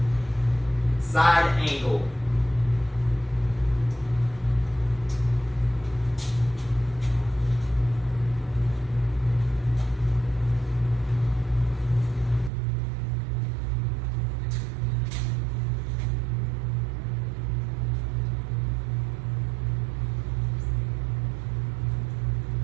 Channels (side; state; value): left; drops out; at 12.5 s